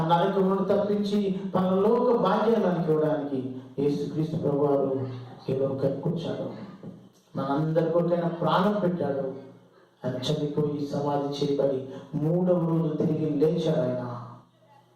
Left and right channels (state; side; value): identical; both; correlation 1.00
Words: నరకమును తప్పించి పరలోక భాగ్యాన్ని మనకి ఇవ్వడానికి యేసుక్రీస్తు ప్రభువారు ఈ లోకానికి వచ్చాడు. మనందరి కొరకైనా ప్రాణం పెట్టాడు. ఆయన చనిపోయి సమాధి చేయబడి 3వ రోజు తిరిగి లేచాడు. ఆయన